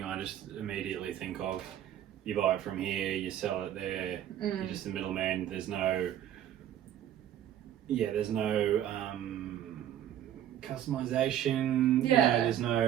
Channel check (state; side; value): quieter; left; 11.0 dB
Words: I just immediately think of you buy it from here, you sell it there, you're just the middleman. There's no customization. Yeah. There's